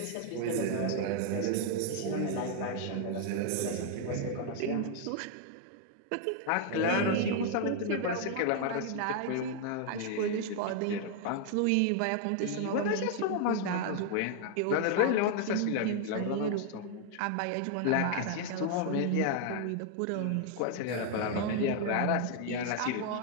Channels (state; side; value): different; both; correlation 0.00